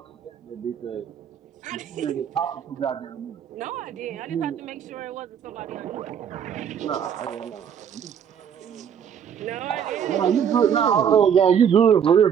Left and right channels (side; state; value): left; quieter; 8.1 dB